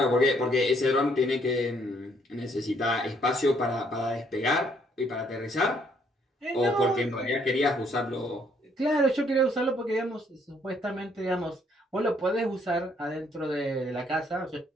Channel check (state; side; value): normal; both; correlation 0.67